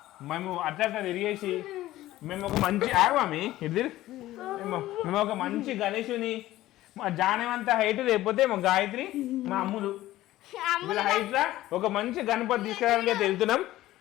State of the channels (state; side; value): quieter; right; 15.7 dB